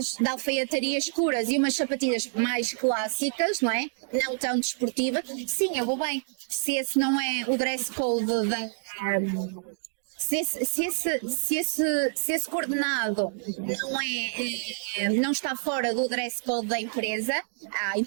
de alfaiataria escuras e umas sapatilhas mais clássicas, não é? Não tão desportivas, sim, eu vou bem. Se esse não é o dress code se esse coordenado não está fora do dress code da empresa, à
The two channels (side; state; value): left; silent; digital silence